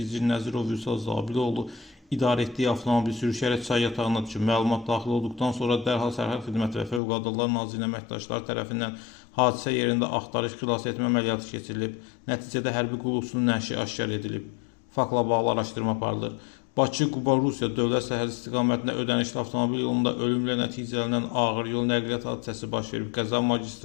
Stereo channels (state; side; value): drops out; right; at 7.0 s